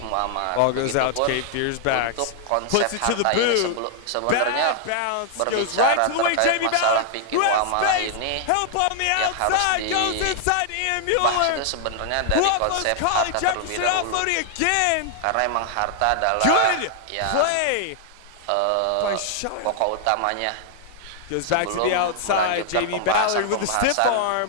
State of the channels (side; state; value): both; different; correlation -0.01